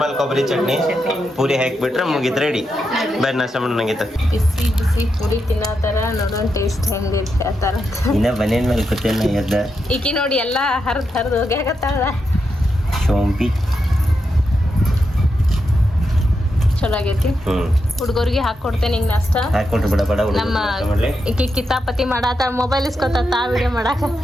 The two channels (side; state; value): both; normal; correlation 0.85